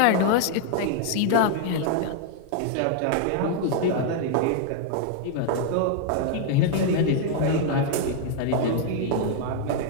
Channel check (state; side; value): different; both; correlation 0.00